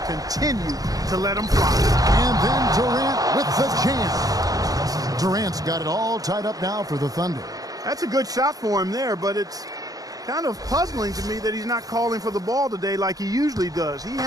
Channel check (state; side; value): late; left; 0.18 ms